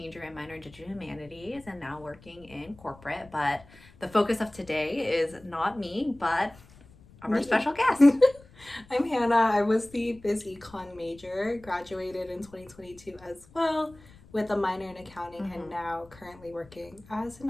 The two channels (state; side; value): noise; left; rumble, 24 dB below the sound